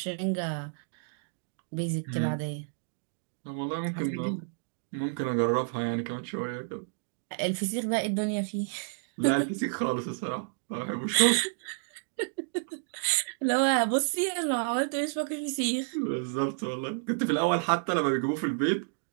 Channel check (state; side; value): silent; left; digital silence